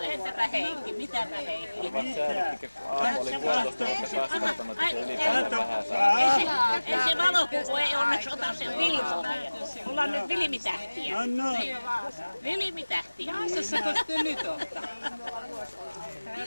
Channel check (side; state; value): both; inverted; correlation -1.00